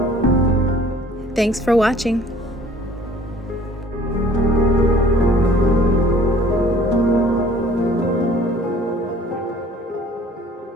Thanks for watching.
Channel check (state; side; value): normal; both; correlation 0.52